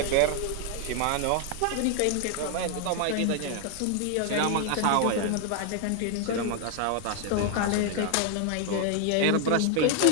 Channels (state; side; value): different; both; correlation 0.00